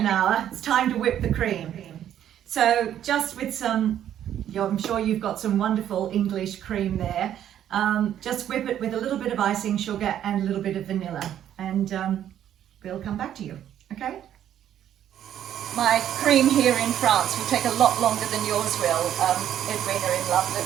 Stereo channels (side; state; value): left; quieter; 10.7 dB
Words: hour, it's time to whip the cream. So just with some, I'm sure you've got some wonderful English cream there, just whip it with a little bit of icing sugar and a little bit of vanilla, and we'll come back to you, okay? My cream here in France will take a lot longer than yours will, Edwina in London,